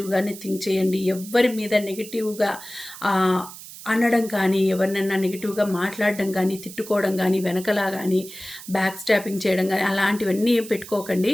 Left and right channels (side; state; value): right; noise; hiss, 15 dB below the sound